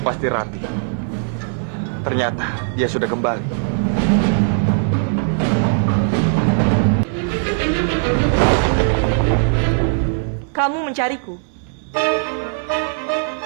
pasti Rati. Ternyata dia sudah kembali. Kamu mencariku.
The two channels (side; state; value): left; silent; digital silence